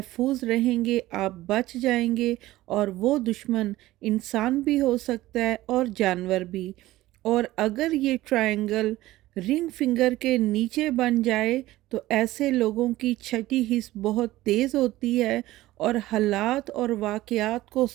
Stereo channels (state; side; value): quieter; left; 16.7 dB